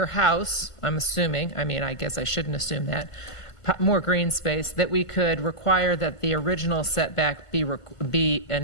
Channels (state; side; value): late; right; 1.5 ms